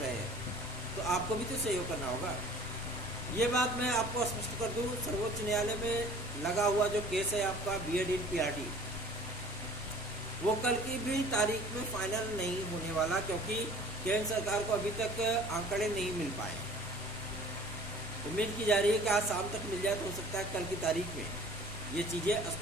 हैं तो आपको भी तो सहयोग करना होगा। ये बात मैं आपको स्पष्ट कर दूं, सर्वोच्च न्यायालय में लगा हुआ जो केस है आपका बीएड इन पीआरटी, वो कल की भी तारीख में फाइनल नहीं होने वाला, क्योंकि केंद्र सरकार को अभी तक आंकड़े नहीं मिल पाए। उम्मीद की जा रही है कि आज शाम तक मिल जाए, तो हो सकता है कल की तारीख में ये चीज़ें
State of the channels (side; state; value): both; normal; correlation 0.48